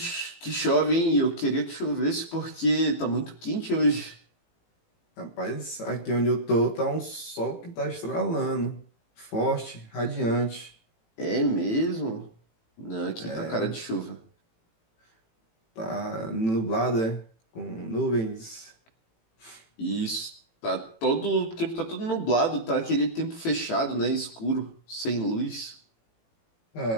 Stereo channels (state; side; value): late; right; 18 ms